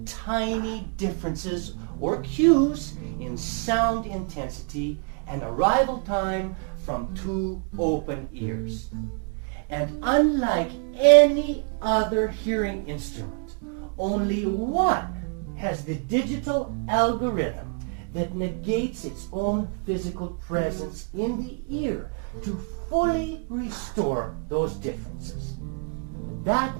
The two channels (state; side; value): quieter; left; 38.8 dB